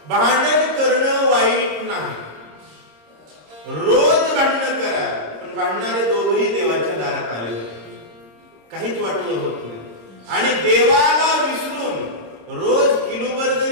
भांडण करणं वाईट नाही, रोज भांडण करा, पण भांडणारे दोघही देवाच्या दारात आले, काहीच वाटोळं होत नाही. आणि देवाला विसरून रोज किलोभर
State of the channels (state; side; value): late; left; 26 ms